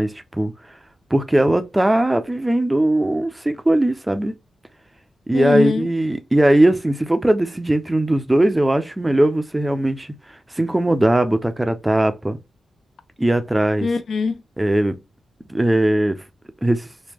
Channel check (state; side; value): normal; both; correlation 0.97